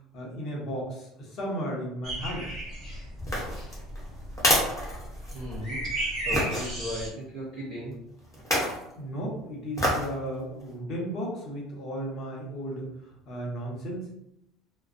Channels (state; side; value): normal; both; correlation 0.43